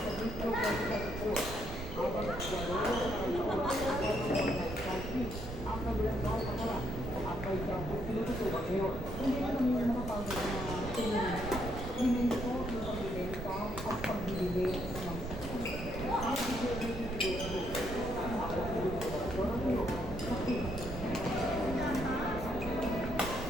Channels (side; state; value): right; noise; rumble, 7 dB below the sound